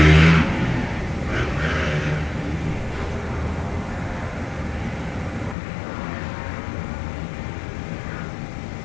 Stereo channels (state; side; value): drops out; right; at 5.6 s